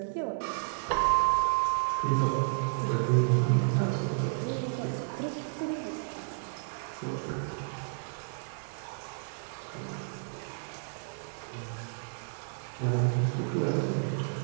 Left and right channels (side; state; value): left; silent; digital silence